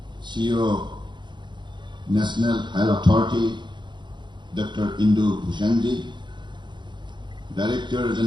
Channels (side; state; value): left; late; 0.22 ms